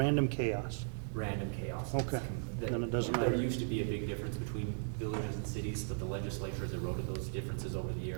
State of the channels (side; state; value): left; silent; digital silence